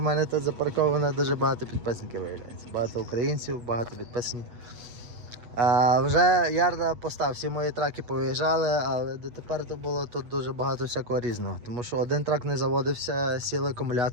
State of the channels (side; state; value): left; late; 8.4 ms